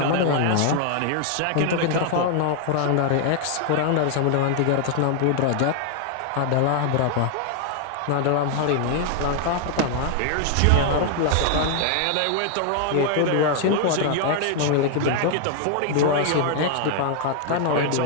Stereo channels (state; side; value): different; both; correlation 0.00